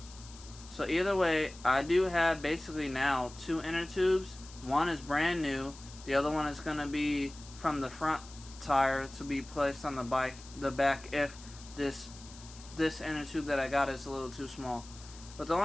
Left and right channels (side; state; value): left; noise; hiss, 18 dB below the sound